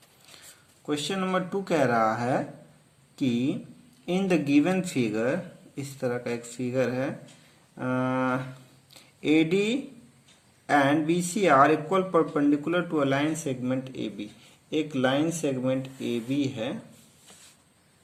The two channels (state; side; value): identical; both; correlation 1.00